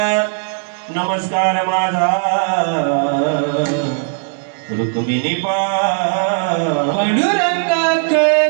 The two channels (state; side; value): silent; left; 61 dB below the other